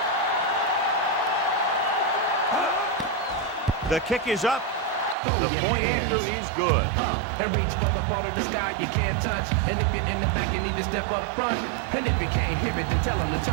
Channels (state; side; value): drops out; left; at 5.2 s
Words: The kick is up. The point after is good. And reach for the part of the sky you can't touch. And if you're in the back, you need to step up front. And if you can't hear it, then tell them to